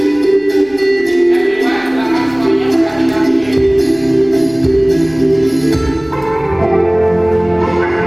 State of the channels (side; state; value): right; noise; rumble, 27 dB below the sound